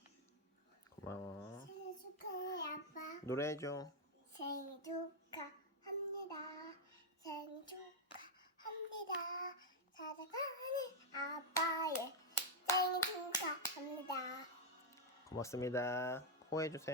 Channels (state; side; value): normal; both; correlation -0.01